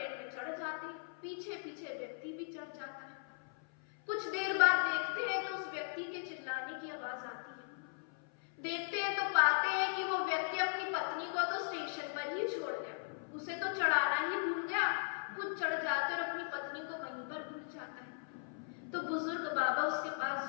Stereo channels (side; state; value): right; silent; 52 dB below the other